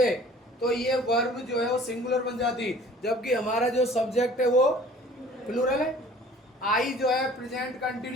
तो ये वर्ब जो है वो सिंगुलर बन जाती, जबकि हमारा जो सब्जेक्ट है वो प्लूरल है। आई जो है प्रेजेंट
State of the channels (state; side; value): normal; both; correlation 0.50